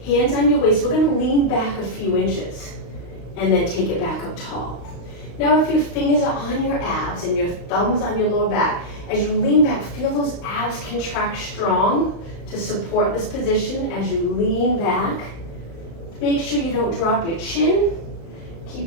Hands on your waist. We're going to lean back a few inches and then take it back up tall. Now if your fingers are on your abs and your thumbs on your lower back, as you lean back, feel those abs contract strong to support this position as you lean back. Make sure you don't drop your chin.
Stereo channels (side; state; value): right; late; 35 ms